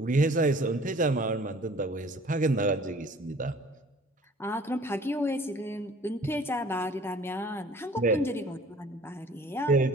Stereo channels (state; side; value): normal; both; correlation 0.51